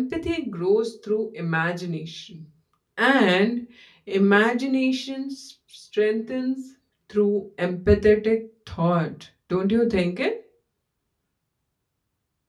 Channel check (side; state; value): both; identical; correlation 1.00